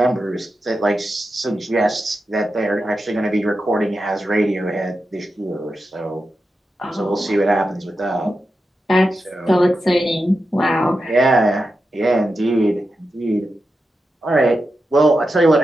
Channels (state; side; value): normal; both; correlation 0.89